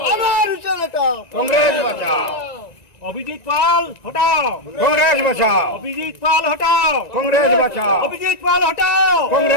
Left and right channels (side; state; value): right; late; 1.9 ms